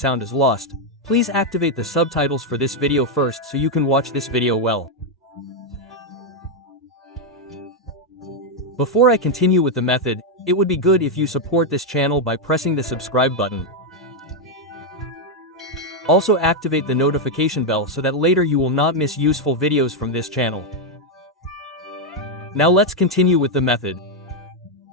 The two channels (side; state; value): both; normal; correlation 0.01